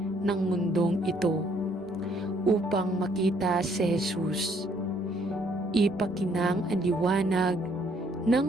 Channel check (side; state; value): both; normal; correlation 0.66